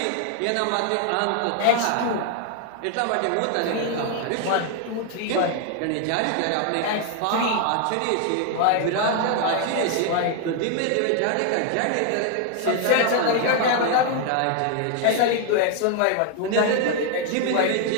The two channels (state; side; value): different; both; correlation 0.00